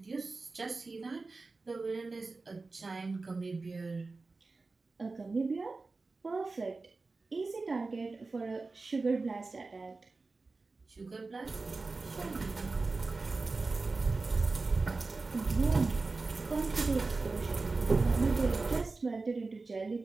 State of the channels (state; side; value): quieter; left; 3.8 dB